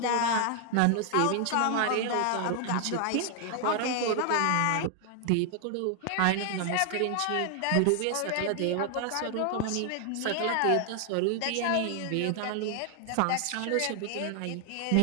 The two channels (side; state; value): both; different; correlation 0.00